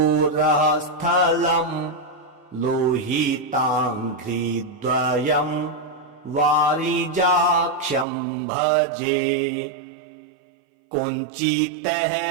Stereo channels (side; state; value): left; drops out; at 8.1 s